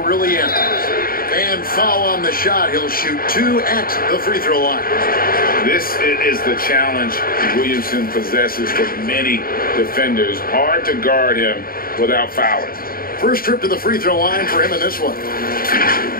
ends. And foul on the shot. He'll shoot 2 at the free throw line. This is the challenge Williamson possesses for many defenders. Hard to guard him without fouling. First trip to the free throw line for him in this one.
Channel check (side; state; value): right; late; 0.43 ms